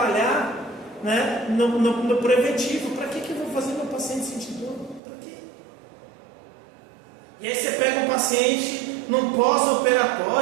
né, no preventivo. Para que eu vou fazer meu paciente sentir dor? Para quê? E aí você pega um paciente num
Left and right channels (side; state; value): left; drops out; at 5.0 s